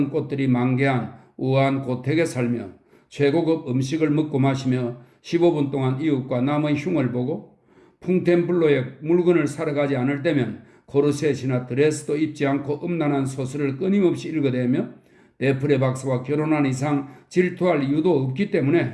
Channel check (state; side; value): identical; both; correlation 1.00